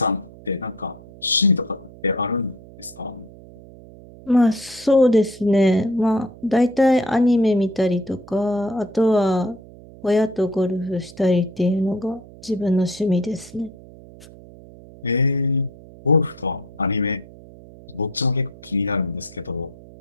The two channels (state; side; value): noise; right; hum, 20 dB below the sound